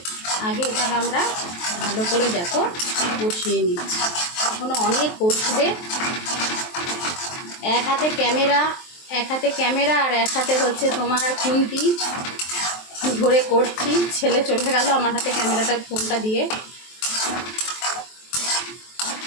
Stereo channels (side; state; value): right; late; 23 ms